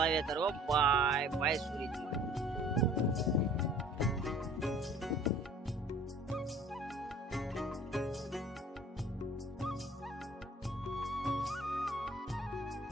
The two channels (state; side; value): normal; both; correlation 0.50